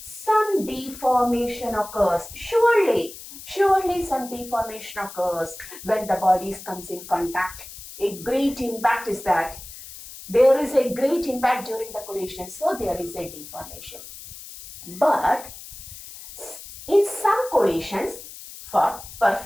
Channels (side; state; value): left; noise; hiss, 14 dB below the sound